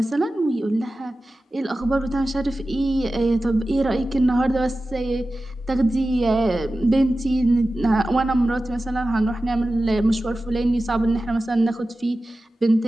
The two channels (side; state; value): both; normal; correlation 0.95